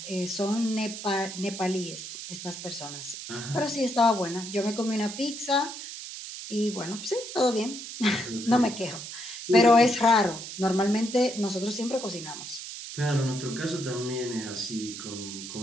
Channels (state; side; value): noise; right; hiss, 9 dB below the sound